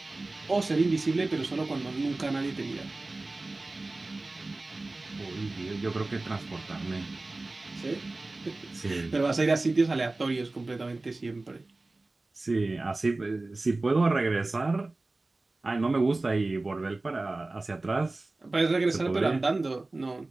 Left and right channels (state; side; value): quieter; left; 3.1 dB